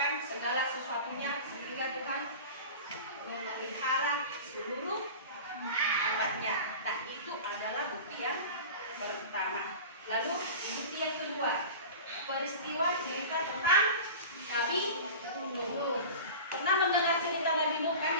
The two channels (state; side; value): inverted; both; correlation -0.34